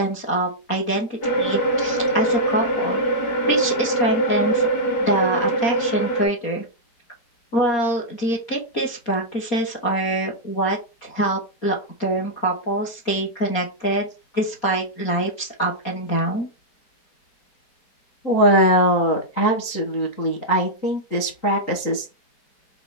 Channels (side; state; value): right; late; 4.3 ms